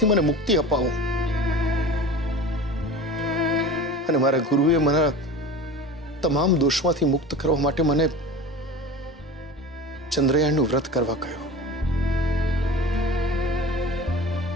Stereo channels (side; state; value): both; normal; correlation 0.35